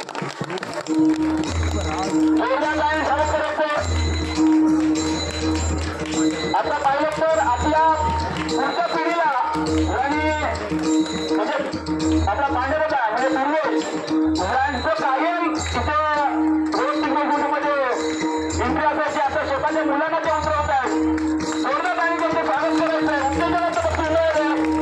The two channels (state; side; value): identical; both; correlation 1.00